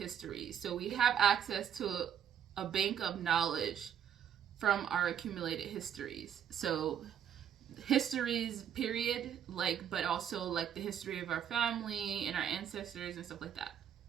So we have access to a bank of knowledge from our accumulated histories. So histories, period, but also the history of our family and our ancestors and stuff like that.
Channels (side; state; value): left; quieter; 9.1 dB